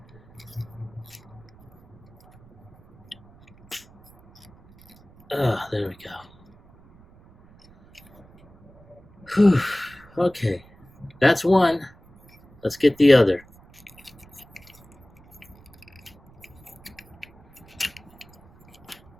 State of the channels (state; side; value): noise; right; rumble, 26 dB below the sound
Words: there we go. Whew. Okay, that's one. Let's get the other.